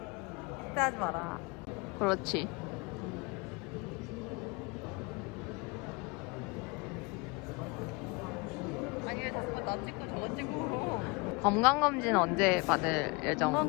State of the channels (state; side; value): quieter; right; 28.0 dB